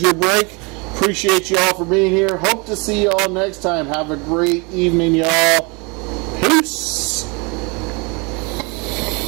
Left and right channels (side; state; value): left; quieter; 29.8 dB